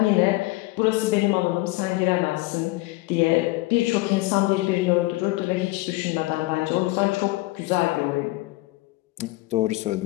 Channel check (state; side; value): quieter; right; 20.6 dB